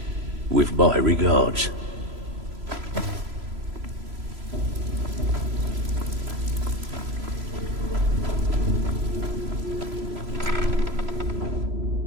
with my regards.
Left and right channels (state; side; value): late; left; 3.0 ms